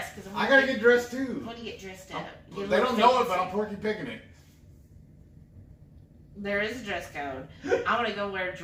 Cause I gotta get dressed too. I want to get dressed up. They don't know it, but I'm Porky Picking it. There is a dress code. I want to go wear a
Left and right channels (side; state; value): both; identical; correlation 1.00